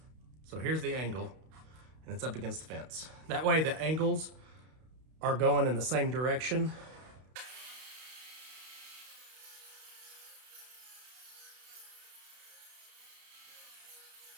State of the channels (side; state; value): left; late; 32 ms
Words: So here's the angle, and it's up against the fence. That way the angles are going in the same direction.